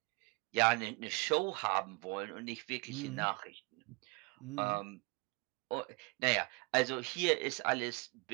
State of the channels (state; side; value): quieter; left; 28.9 dB